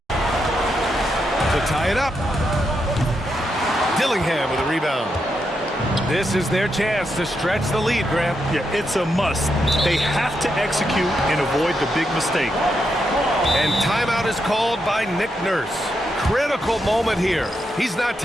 To tie it up. Dillingham with a rebound. This is their chance to stretch the lead, Grant. Yeah, it's a must. They have to execute and avoid the big mistake. And timeout is called by Nick Nurse. Critical moment here. He's not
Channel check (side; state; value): both; normal; correlation 0.83